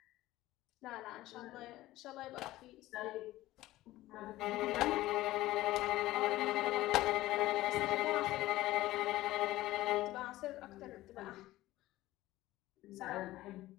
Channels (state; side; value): quieter; right; 16.6 dB